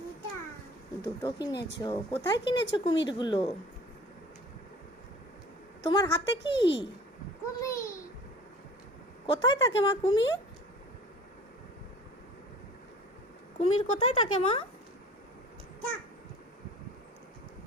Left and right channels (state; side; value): normal; both; correlation 0.44